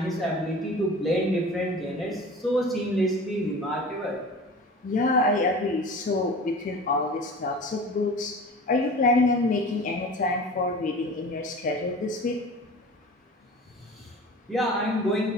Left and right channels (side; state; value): both; normal; correlation 0.38